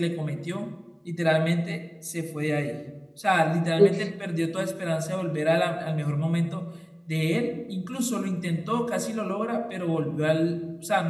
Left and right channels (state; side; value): identical; both; correlation 1.00